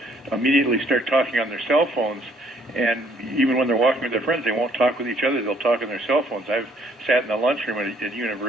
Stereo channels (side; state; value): both; normal; correlation 0.63